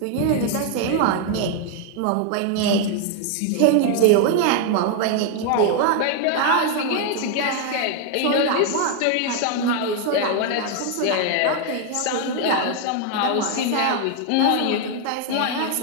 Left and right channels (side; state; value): both; different; correlation 0.01